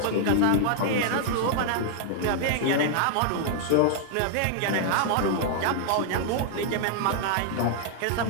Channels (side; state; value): both; different; correlation -0.01